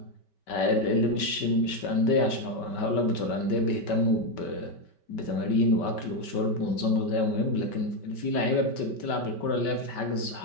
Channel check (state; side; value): late; right; 5.2 ms